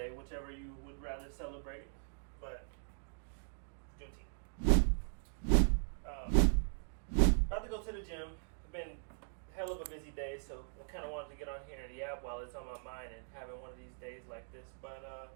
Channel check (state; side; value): silent; left; digital silence